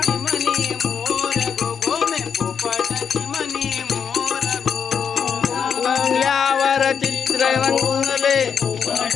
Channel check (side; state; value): right; quieter; 7.0 dB